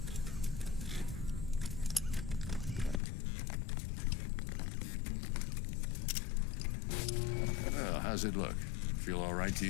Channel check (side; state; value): right; drops out; at 3.0 s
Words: Well, how's it look? Feel all right to